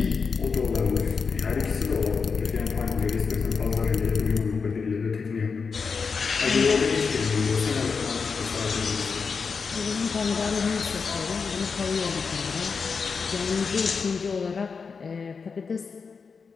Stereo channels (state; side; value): quieter; right; 5.3 dB